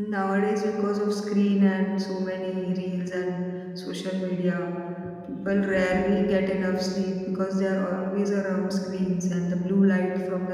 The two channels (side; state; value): both; identical; correlation 1.00